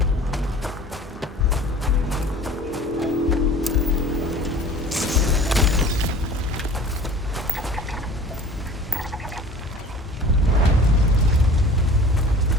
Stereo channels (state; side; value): normal; both; correlation 0.45